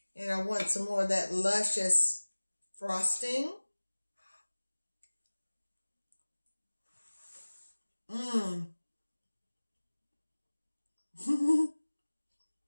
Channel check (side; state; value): both; inverted; correlation -1.00